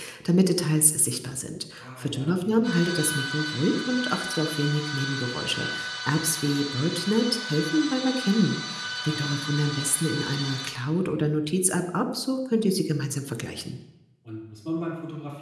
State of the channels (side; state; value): both; identical; correlation 1.00